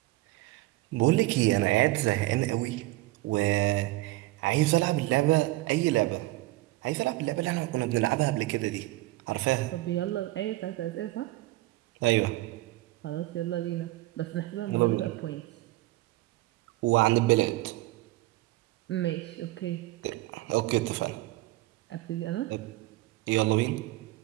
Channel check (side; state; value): left; quieter; 18.8 dB